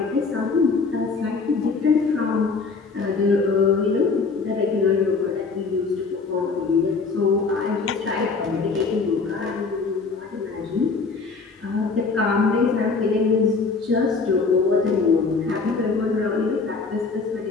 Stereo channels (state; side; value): quieter; right; 4.4 dB